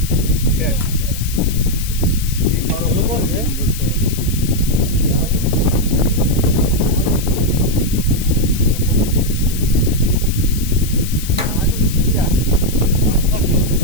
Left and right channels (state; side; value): noise; left; hiss, 10 dB below the sound